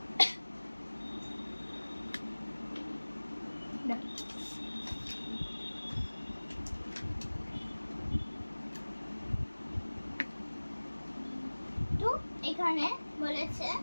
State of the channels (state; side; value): inverted; both; correlation -1.00